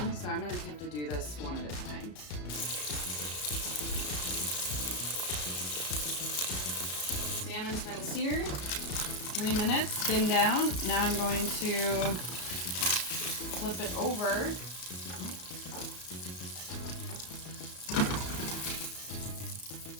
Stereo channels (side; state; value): right; late; 33 ms